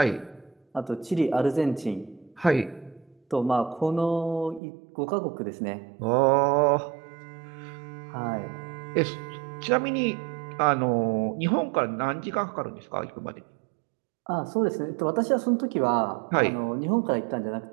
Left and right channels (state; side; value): drops out; left; at 4.6 s